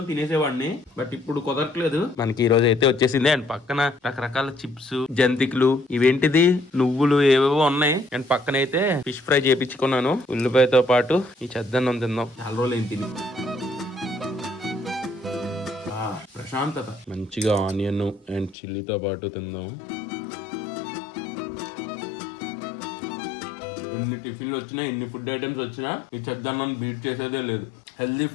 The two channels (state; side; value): drops out; right; at 18.6 s